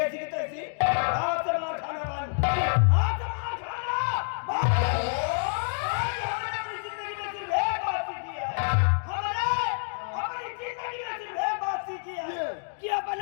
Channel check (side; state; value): right; silent; digital silence